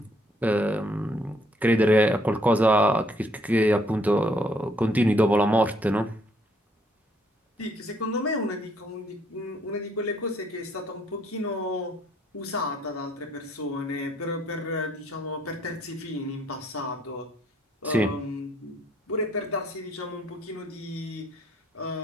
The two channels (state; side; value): normal; both; correlation 0.67